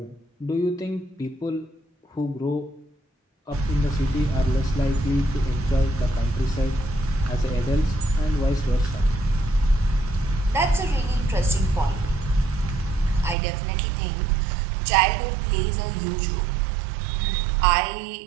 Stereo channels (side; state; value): left; drops out; at 13.4 s